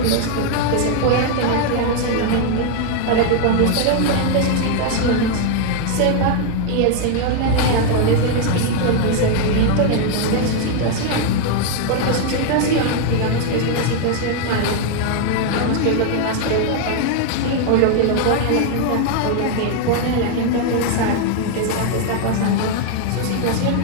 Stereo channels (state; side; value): different; both; correlation 0.00